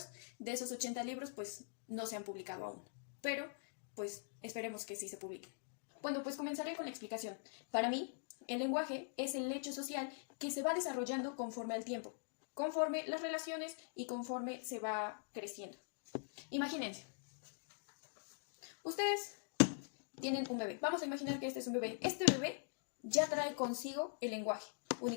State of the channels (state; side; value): silent; right; digital silence